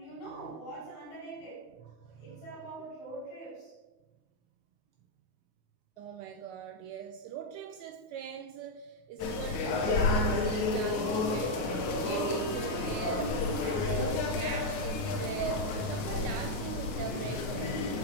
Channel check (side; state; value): right; late; 9.5 ms